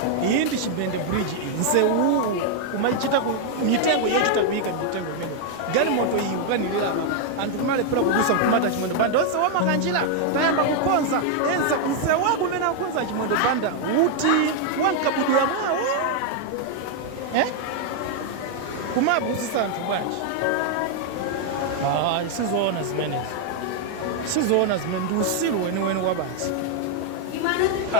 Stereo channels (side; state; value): both; different; correlation 0.00